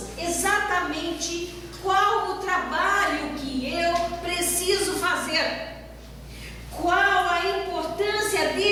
exatamente qual o trabalho que eu preciso fazer, qual a importância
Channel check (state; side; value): identical; both; correlation 1.00